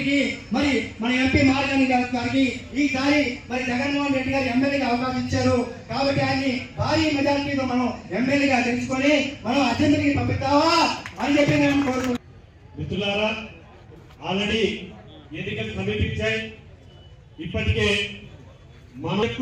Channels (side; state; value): both; identical; correlation 1.00